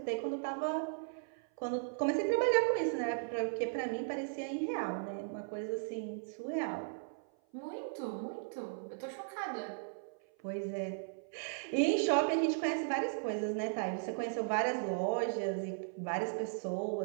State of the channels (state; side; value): silent; left; 53 dB below the other